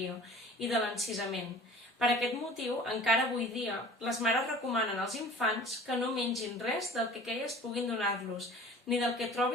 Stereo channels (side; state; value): both; normal; correlation 0.45